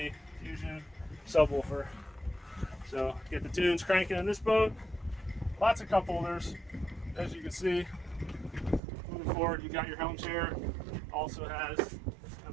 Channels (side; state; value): left; drops out; at 8.8 s